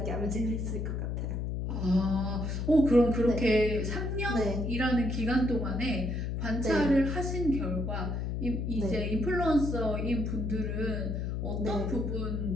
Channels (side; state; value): left; noise; hum, 2 dB below the sound